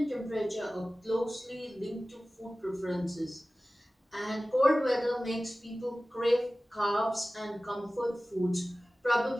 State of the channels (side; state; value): both; normal; correlation 0.97